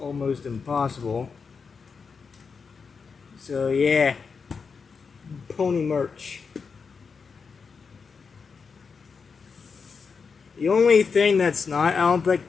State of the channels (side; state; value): right; quieter; 5.4 dB